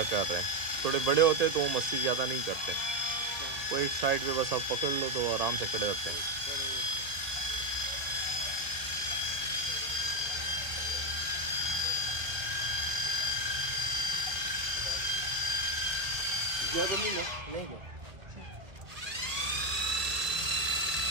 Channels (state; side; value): late; left; 2.0 ms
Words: कर रहे हैं। थोड़े बड़े होते तो वो मस्ती ज़्यादा नहीं करते। वो एक साइड पे बस आप पकड़ लो तो आराम से खड़े रहते हैं। नहीं क्या